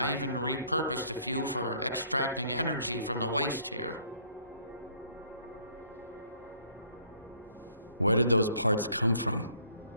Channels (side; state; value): both; inverted; correlation -0.61